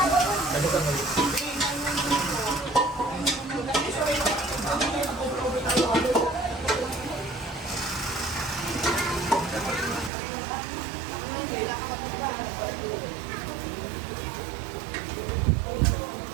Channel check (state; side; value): drops out; left; at 10.1 s